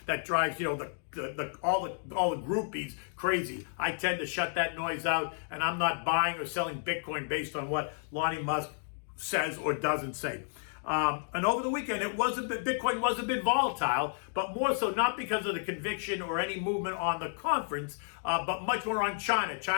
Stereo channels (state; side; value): silent; right; 57 dB below the other